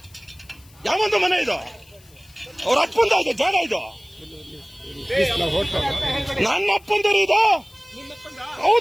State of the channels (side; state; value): left; noise; hiss, 27 dB below the sound